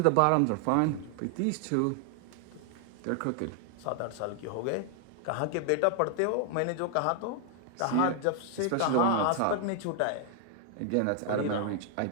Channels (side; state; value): both; different; correlation 0.00